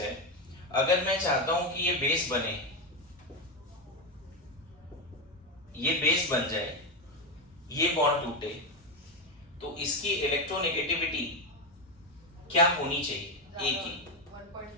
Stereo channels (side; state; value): both; normal; correlation 0.10